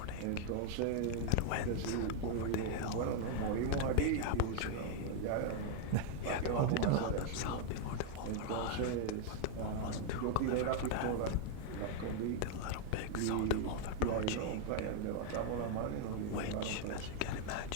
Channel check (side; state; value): both; different; correlation 0.00